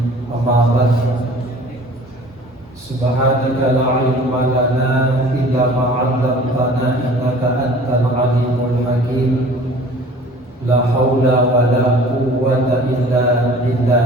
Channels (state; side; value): normal; both; correlation 0.47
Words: أما بعد Subhanaka la ilma lana illa ma 'allamtana innaka antal alimul hakim. La haula wa la quwwata illa